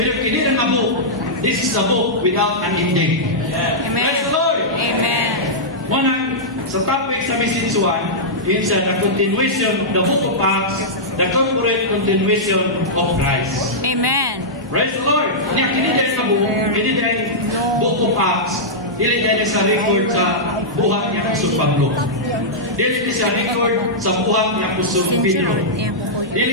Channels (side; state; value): both; normal; correlation -0.11